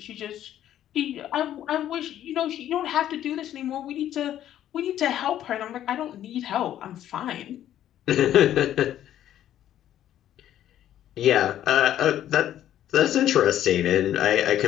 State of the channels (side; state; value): right; quieter; 11.6 dB